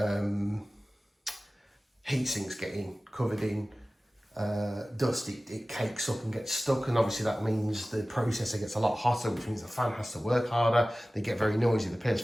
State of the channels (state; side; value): normal; both; correlation 0.97